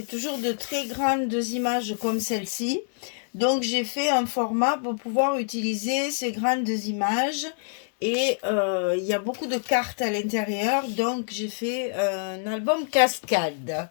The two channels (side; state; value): right; silent; digital silence